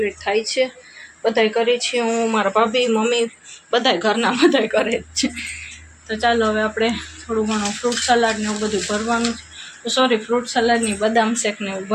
થાય છે, બધાય કરી છીએ, હું મારા ભાભી મમ્મી બધાય ઘરના બધાય કરે જ છે. તો ચાલો હવે આપણે થોડું ઘણું ફ્રૂટ સલાડ ને એવું બધું ભરવાનું છે, સોરી ફ્રૂટ સલાડની બદામ શેક ને એવું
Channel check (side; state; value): both; identical; correlation 1.00